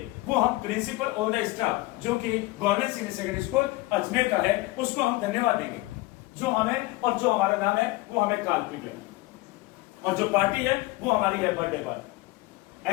वो हम प्रिंसिपल ऑल द स्टाफ, जो कि government senior secondary school Ajmer का है, उसको हम धन्यवाद देंगे। जो हमें और जो हमारा नाम है वो हमें काल्पनिक है, और जो पार्टी है वो हमारी है बर्थडे पार्टी,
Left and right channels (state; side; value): quieter; right; 20.6 dB